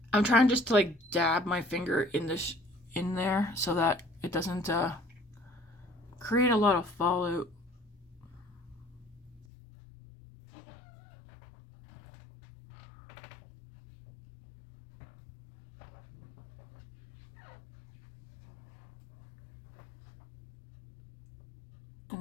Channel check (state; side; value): drops out; right; at 9.5 s